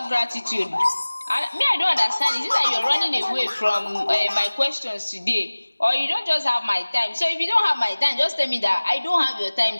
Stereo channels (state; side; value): inverted; both; correlation -1.00